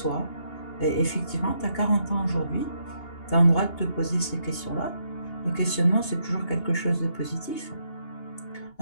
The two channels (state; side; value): late; right; 2.8 ms